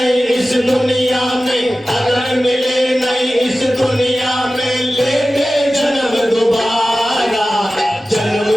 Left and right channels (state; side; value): normal; both; correlation 0.95